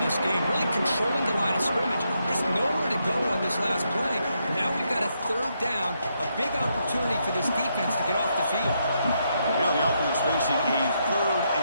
game, really controlling the line of scrimmage. Just nowhere to go on this last play. And now we've got a 3rd down, a big opportunity for this defense to get off the field. Now the offense facing a 3rd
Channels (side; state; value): both; inverted; correlation -0.79